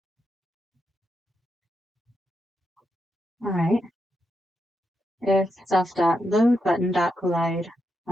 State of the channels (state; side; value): normal; both; correlation 0.84